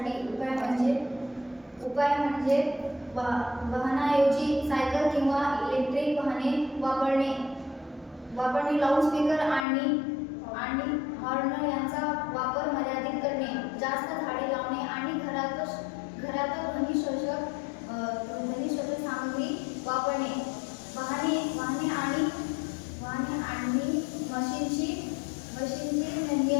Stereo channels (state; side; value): drops out; right; at 9.7 s